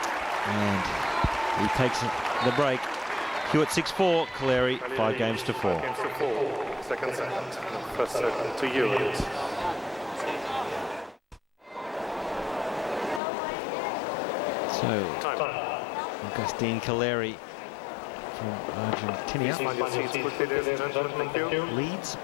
and he takes the break. Hewitt 6-4, Calleri 5 games to 4. Second set. First set to Hewitt. So, Agustin Calleri from Argentina leads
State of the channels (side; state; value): right; drops out; at 13.2 s